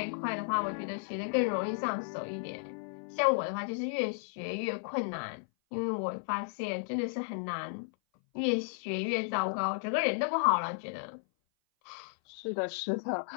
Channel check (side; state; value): right; silent; 55 dB below the other